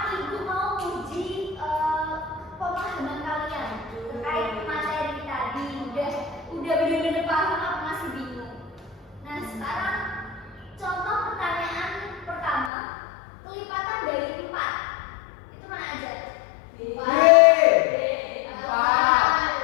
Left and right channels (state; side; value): drops out; right; at 12.7 s